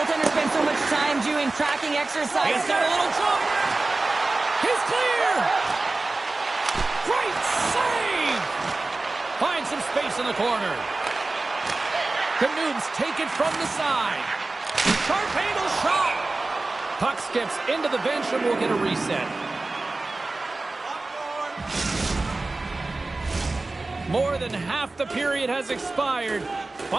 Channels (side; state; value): left; quieter; 3.2 dB